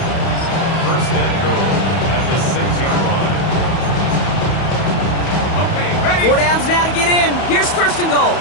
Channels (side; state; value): right; late; 31 ms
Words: 1st and goal at the 6-yard line. Okay, ready? 4 downs now to get in. Here's 1st and goal. All